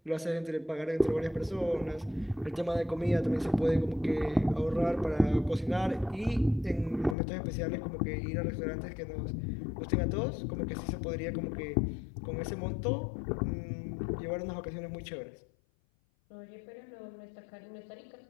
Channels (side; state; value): right; drops out; at 7.2 s